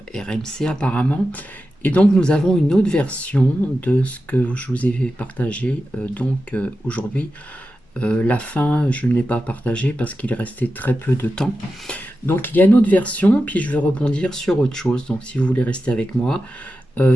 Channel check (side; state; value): both; normal; correlation 0.91